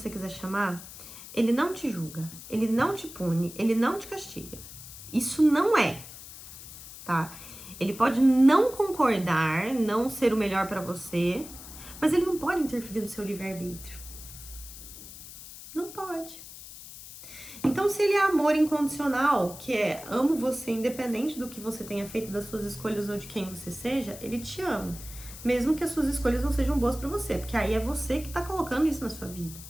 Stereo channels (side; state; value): left; noise; hiss, 14 dB below the sound